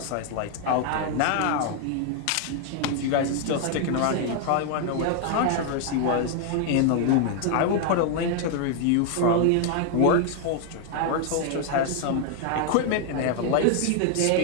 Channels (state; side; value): different; both; correlation 0.00